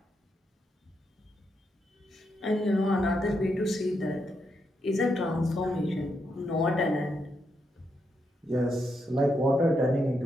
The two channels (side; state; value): both; normal; correlation 0.81